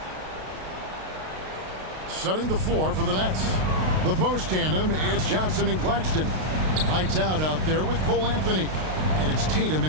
Setting the floor for the Nets. The post tandem, it's Johnson and Claxton. Lights out there with Cole Anthony. And it's Tatum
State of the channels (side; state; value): left; late; 32 ms